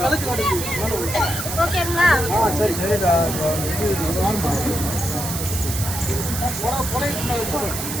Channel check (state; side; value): noise; right; hiss, 5 dB below the sound